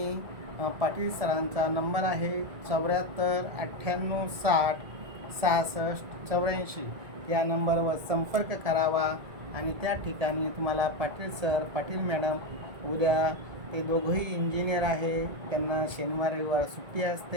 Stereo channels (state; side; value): late; left; 1.9 ms